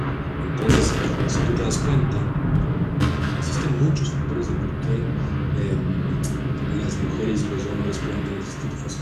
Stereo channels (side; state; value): both; identical; correlation 1.00